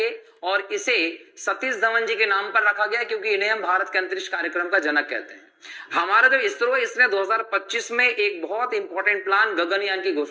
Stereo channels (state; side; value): identical; both; correlation 1.00